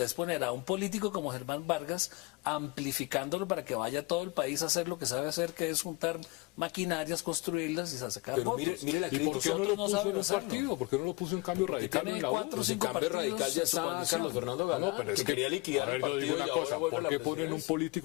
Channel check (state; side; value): quieter; right; 24.6 dB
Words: Es poner a un político como Germán Vargas amplificándolo para que vaya a todo el país a hacer lo que sabe hacer, que es juntar maquinarias, construirlas y sacar Pero votos. mire la ¿Y por qué no lo Nosotros no puso en sabemos un hacerlo. partido? ¿Por qué no lo puso en Cambio Radical tiene en la U? 4 o Pues en 5 cambio partidos radical ya en su está coalición. Carlos Fernando Galán, No, pero es que que, quería liquidar a el ver, yo digo partido una y ahora cosa, vuelve a ¿por la qué ponen un presidencia?